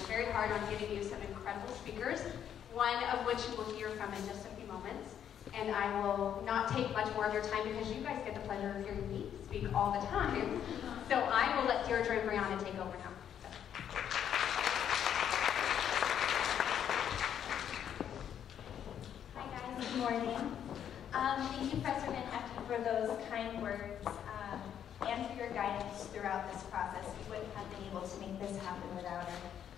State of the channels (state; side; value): quieter; right; 9.3 dB